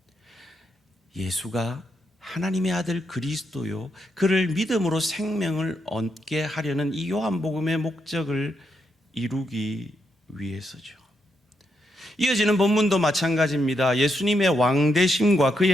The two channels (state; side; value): normal; both; correlation 0.81